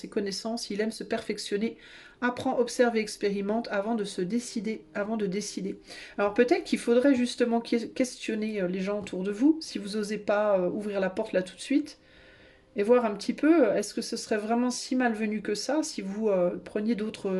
connaissances. Il aime se perfectionner, apprend, observe et expérimente avant de se décider, avant de décider. Alors peut-être qu'il faudrait justement questionner les gens autour de vous, si vous n'osez pas ouvrir la porte là tout de suite, et voir un petit peu, est-ce que ce serait vraiment si malvenu que ça, si vous preniez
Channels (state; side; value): identical; both; correlation 1.00